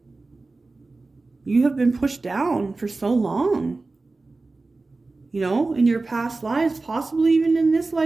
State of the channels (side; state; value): left; quieter; 3.5 dB